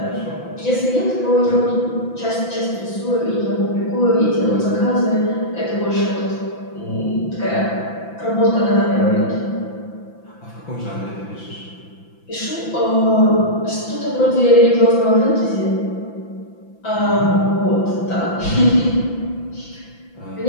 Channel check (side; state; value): right; late; 5.9 ms